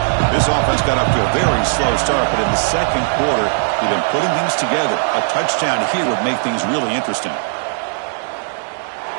This offense got up to a very slow start, but in the 2nd quarter, they've been putting things together. A touchdown here would make things really interesting.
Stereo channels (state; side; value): silent; left; digital silence